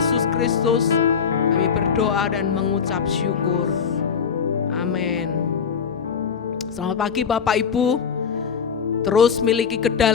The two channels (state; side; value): quieter; right; 6.7 dB